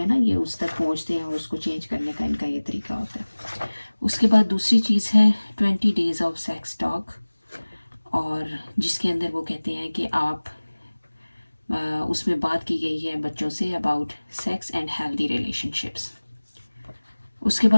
ना, ये उस तक पहुँचते हैं और उसको चेंज करने का इनका ये तरीका होता है। उसके बाद दूसरी चीज़ है 20 डेज़ ऑफ सेक्स टॉक, और जिसके अंदर वो कहते हैं कि आप उसमें बात की गई है बच्चों say about sex and healthy relationships. उसके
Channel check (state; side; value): inverted; both; correlation -1.00